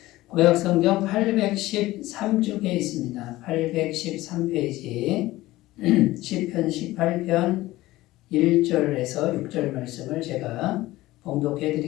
구약성경 813쪽에 있습니다. 813페이지 시편 18편 1절에서 6절 말씀을 제가 봉독해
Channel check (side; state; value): right; quieter; 17.5 dB